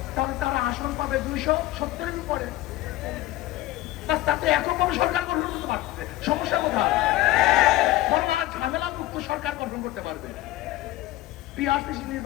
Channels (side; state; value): right; quieter; 16.4 dB